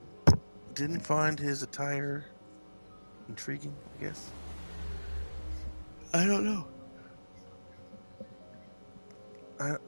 didn't find his attire intriguing, I guess. I don't know.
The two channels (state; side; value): inverted; both; correlation -1.00